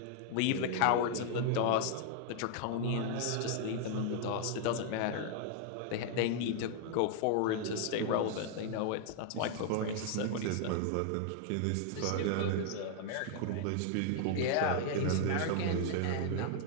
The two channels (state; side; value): different; both; correlation 0.00